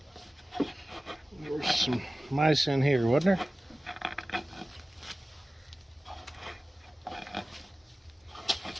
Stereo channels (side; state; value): both; normal; correlation 0.96